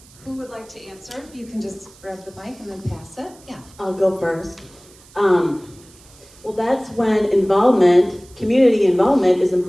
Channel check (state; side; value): noise; right; hiss, 25 dB below the sound